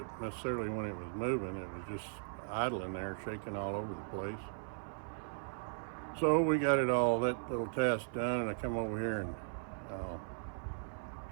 necessarily when it was moving. It was just idling there, shaking all over the place. So we got it all, that little task done, and I come over here and I'll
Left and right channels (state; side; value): silent; left; 53 dB below the other